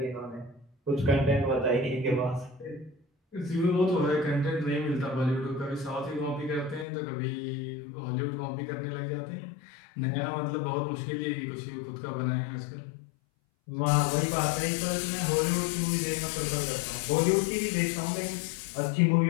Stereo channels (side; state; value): right; drops out; at 6.9 s